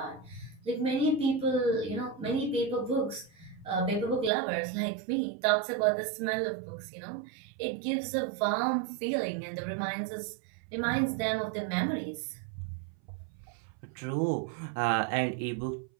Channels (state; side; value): drops out; left; at 4.3 s